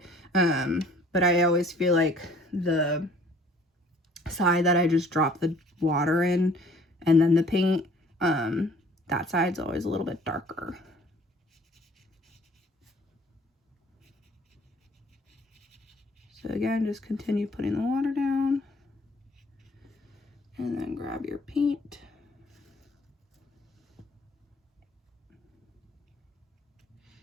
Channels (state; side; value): normal; both; correlation 0.55